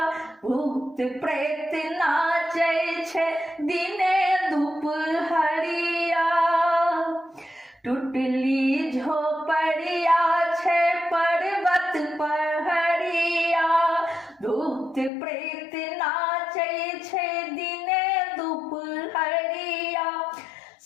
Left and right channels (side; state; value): right; drops out; at 15.1 s